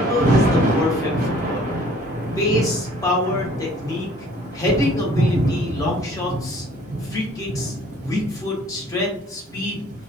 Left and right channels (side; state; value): both; normal; correlation 0.55